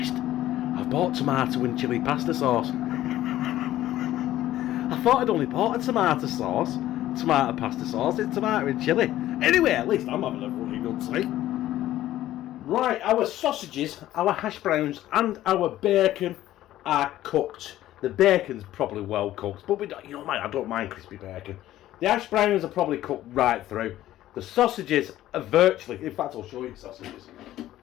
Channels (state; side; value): quieter; right; 13.9 dB